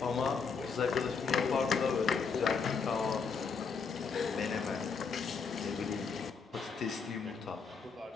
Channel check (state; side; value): quieter; right; 5.4 dB